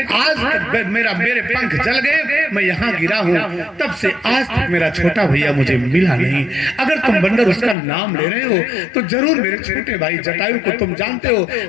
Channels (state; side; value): drops out; right; at 7.8 s